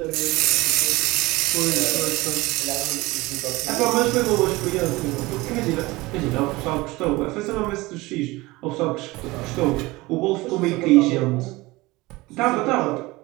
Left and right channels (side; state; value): left; quieter; 21.2 dB